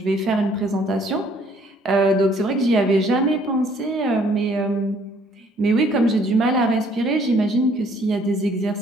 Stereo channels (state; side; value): normal; both; correlation 0.61